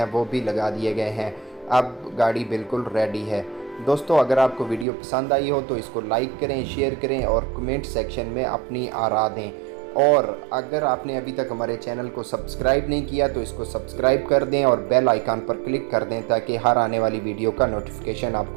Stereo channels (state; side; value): drops out; left; at 4.9 s